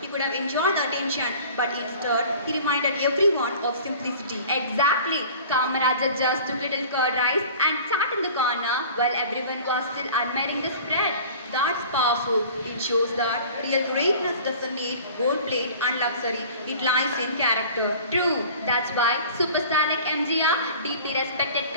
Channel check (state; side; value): inverted; both; correlation -0.44